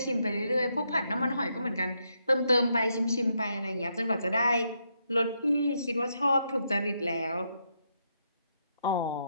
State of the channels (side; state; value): both; inverted; correlation -0.79